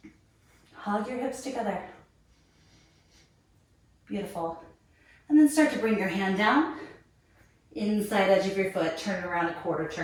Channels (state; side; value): identical; both; correlation 1.00